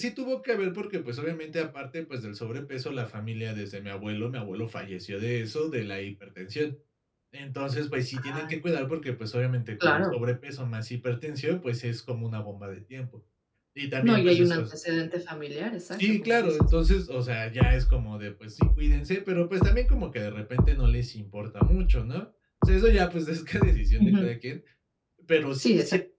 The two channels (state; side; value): identical; both; correlation 1.00